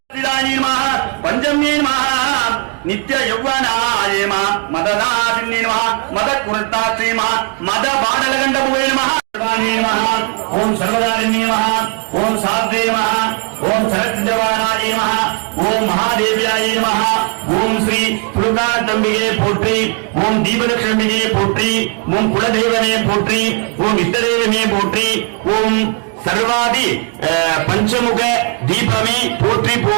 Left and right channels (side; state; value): left; quieter; 34.7 dB